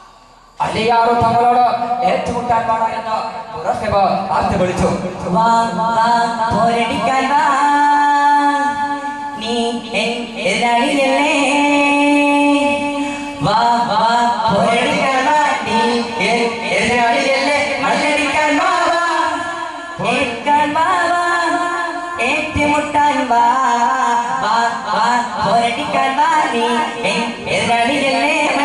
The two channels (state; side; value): identical; both; correlation 1.00